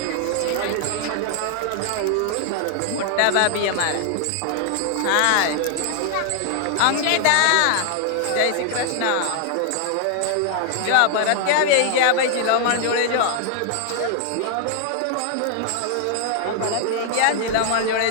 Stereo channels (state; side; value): different; both; correlation 0.00